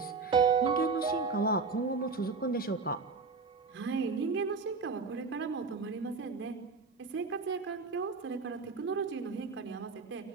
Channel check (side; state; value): left; quieter; 4.6 dB